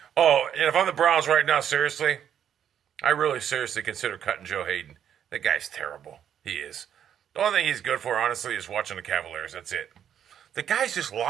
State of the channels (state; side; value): quieter; left; 9.3 dB